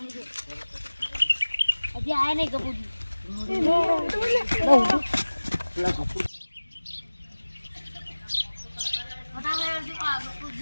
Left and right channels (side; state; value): both; inverted; correlation -1.00